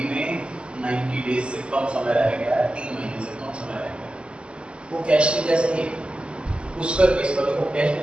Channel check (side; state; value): left; late; 0.054 ms